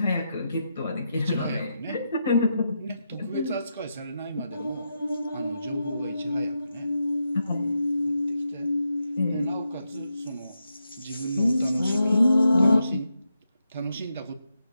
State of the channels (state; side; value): inverted; both; correlation -0.85